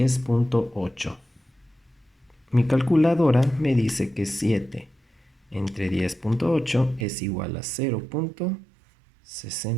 Mi calculadora me dice que 7 entre 10.8 es igual a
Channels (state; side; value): drops out; left; at 7.1 s